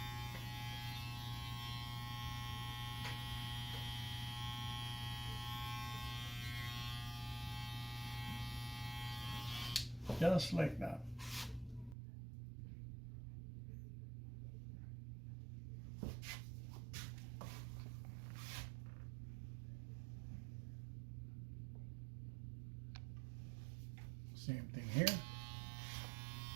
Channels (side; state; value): left; drops out; at 12.0 s